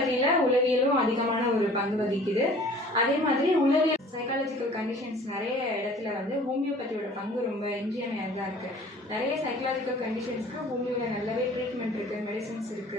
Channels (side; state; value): both; normal; correlation 0.49